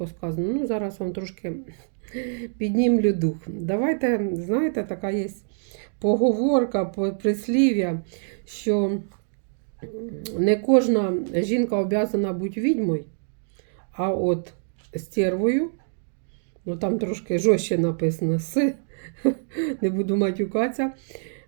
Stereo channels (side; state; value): left; silent; digital silence